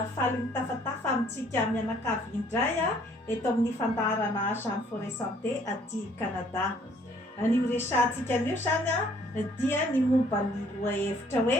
faly mitafatafa amintsika mianakavy indray eto amin'ny fandaharana Jean Forêt Santé aty Canada. An'io resahantsika an'io zany dia ny momba ny lohahevitra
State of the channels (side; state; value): both; normal; correlation 0.61